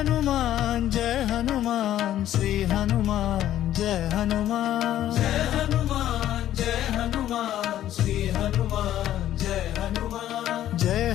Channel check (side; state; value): right; quieter; 12.3 dB